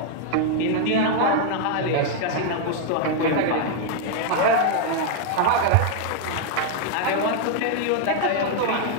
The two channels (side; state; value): both; different; correlation 0.00